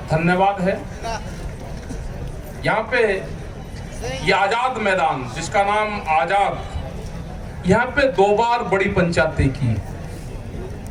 धन्यवाद है। यहाँ पे ये आजाद मैदान जिसका नाम आजाद, यहाँ पे 2 बार बड़ी पंचायतें की,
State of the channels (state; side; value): identical; both; correlation 1.00